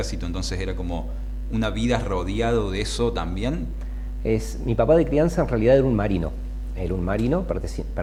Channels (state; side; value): identical; both; correlation 1.00